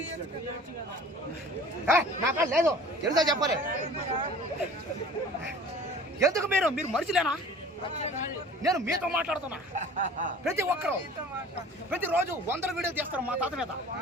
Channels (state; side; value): normal; both; correlation 0.45